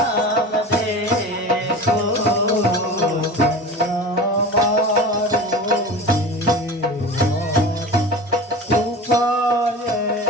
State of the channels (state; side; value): normal; both; correlation 0.33